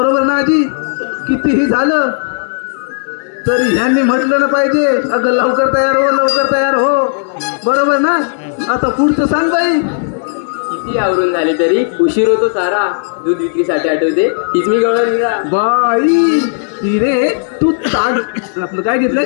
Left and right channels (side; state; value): right; silent; digital silence